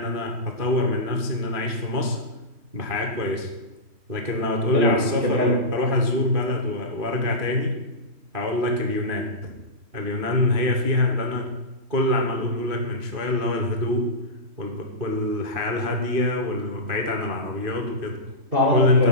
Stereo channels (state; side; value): late; left; 2.5 ms